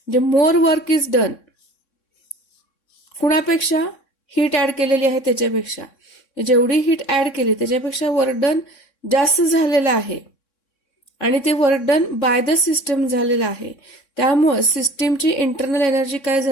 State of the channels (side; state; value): right; late; 3.6 ms